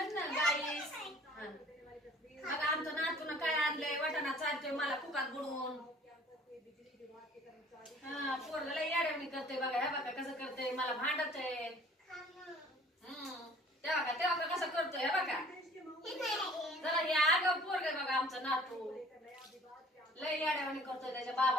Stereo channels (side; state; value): both; normal; correlation 0.51